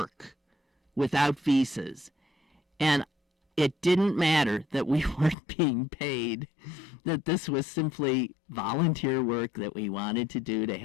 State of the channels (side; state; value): right; drops out; at 5.4 s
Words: without visas. And it didn't matter that we weren't being paid, that this was simply volunteer work that we wanted to do to